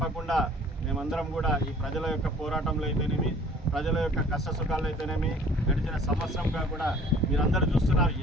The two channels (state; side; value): normal; both; correlation 0.51